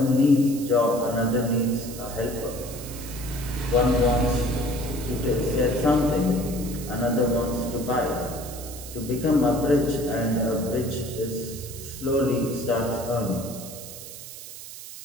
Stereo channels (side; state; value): right; noise; hiss, 13 dB below the sound